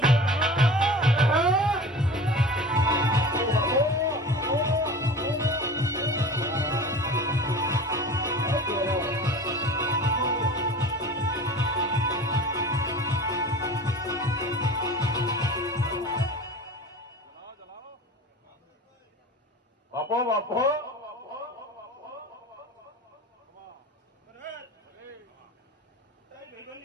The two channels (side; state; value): both; normal; correlation 0.37